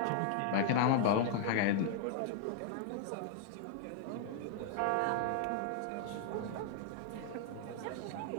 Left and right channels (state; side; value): different; both; correlation -0.01